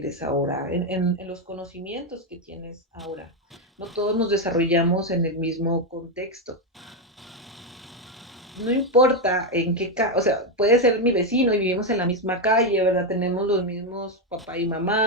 ahora, en los conocimientos que tienes ahora. No todos nos desarrollamos en el mismo contexto. No importa en qué, o sea, puede ser mi vecino y vivimos en la misma calle, ¿verdad? Tenemos los mismos papá y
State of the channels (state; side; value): normal; both; correlation 0.05